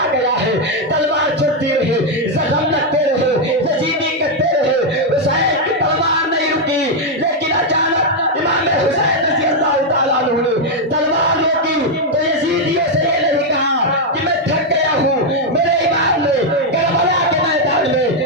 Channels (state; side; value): normal; both; correlation 0.01